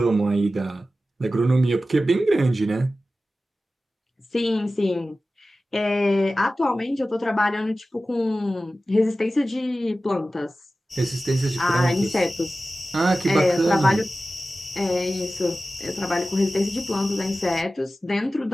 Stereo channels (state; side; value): normal; both; correlation 0.95